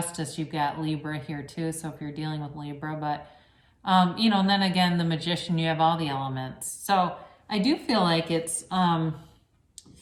you've got Libra here too. So if you're dealing with Libra, but and then again, the Magician, you have all the elements. So I do feel like it's,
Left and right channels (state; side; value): identical; both; correlation 1.00